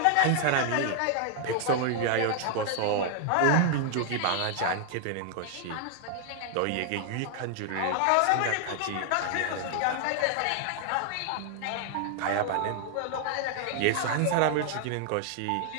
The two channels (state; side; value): different; both; correlation 0.00